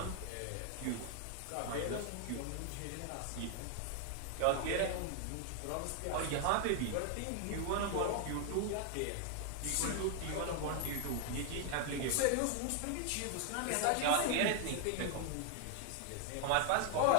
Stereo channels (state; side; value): different; both; correlation 0.00